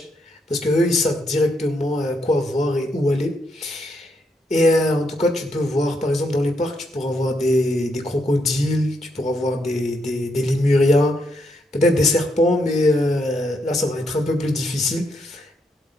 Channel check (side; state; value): both; normal; correlation 0.77